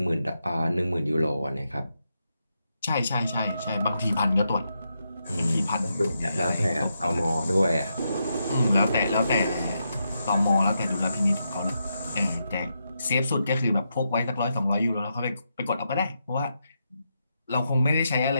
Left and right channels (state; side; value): inverted; both; correlation -0.83